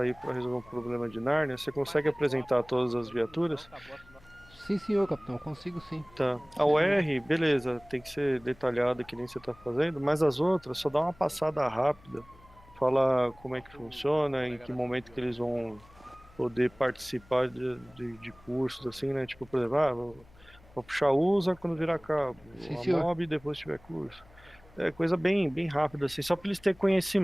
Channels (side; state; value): left; noise; hum, 26 dB below the sound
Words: para resolver um problema de Nárnia. Você consegue apresentar todas as viaturas? Sim, senhor, capitão. Consigo sim. Tá. A UR, beleza. Tem que ser detalhada que nem você tá fazendo. Mas as outras, só dá uma passada rápida. Fala como é que funciona, em que momento que eles vão poder participar de cursos, assim, né? Tipo, por exemplo, vou puxar USA quando virar cabo. Sim, a senhor. MOB depois tiver curso. É coisa bem rápida, assim. Só para eles terem